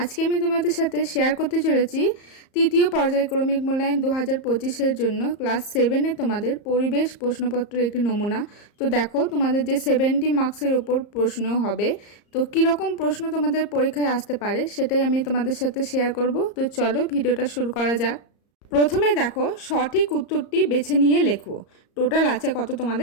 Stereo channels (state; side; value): late; right; 34 ms